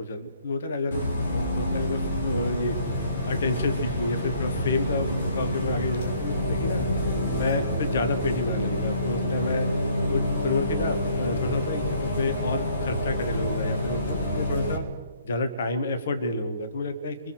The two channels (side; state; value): both; inverted; correlation -0.61